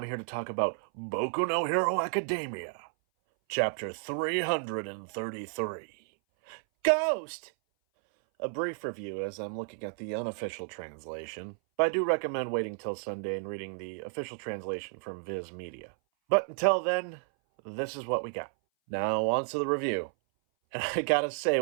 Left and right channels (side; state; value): left; silent; 57 dB below the other